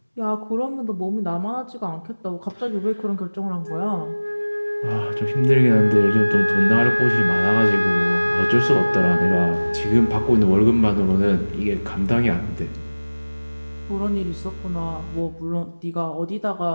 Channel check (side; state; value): both; inverted; correlation -1.00